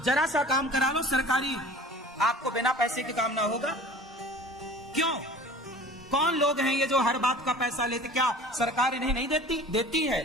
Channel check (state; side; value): normal; both; correlation 0.44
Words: जरा सा काम करा लो सरकारी, आपको बिना पैसे के काम ना होगा। क्यों? कौन लोग हैं ये जो हर बात का पैसा लेते? क्या सरकार इन्हें नहीं देती? देती है,